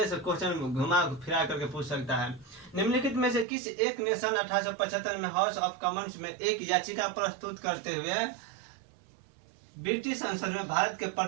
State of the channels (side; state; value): left; drops out; at 3.5 s